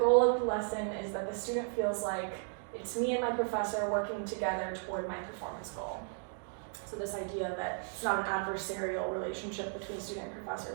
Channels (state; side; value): silent; left; 54 dB below the other